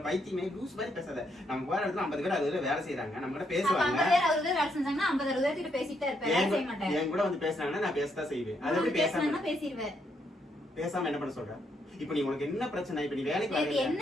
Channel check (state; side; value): normal; both; correlation 0.76